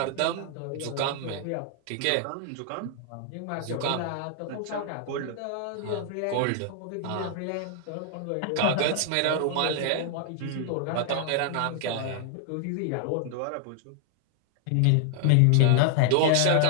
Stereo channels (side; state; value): both; different; correlation 0.00